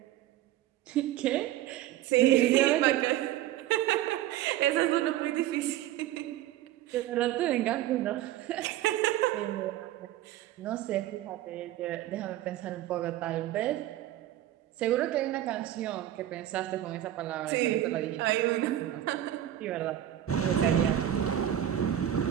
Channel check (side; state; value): left; quieter; 12.7 dB